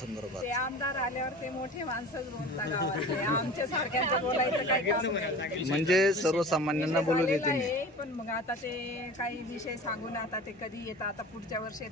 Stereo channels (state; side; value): normal; both; correlation 0.37